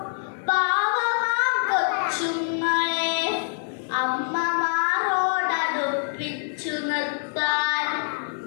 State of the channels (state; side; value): silent; right; digital silence